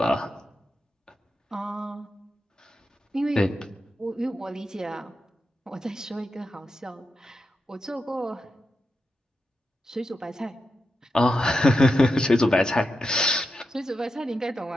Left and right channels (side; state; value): both; normal; correlation 0.88